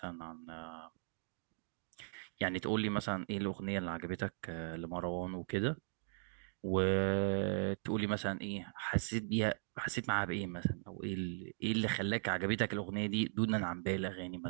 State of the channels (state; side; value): silent; left; digital silence